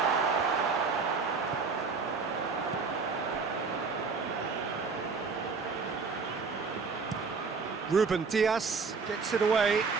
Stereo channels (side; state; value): left; quieter; 4.8 dB